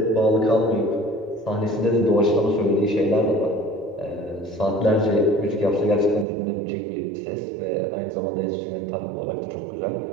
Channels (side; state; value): left; drops out; at 6.2 s